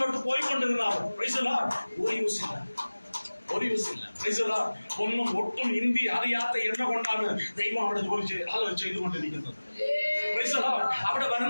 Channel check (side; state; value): both; inverted; correlation -1.00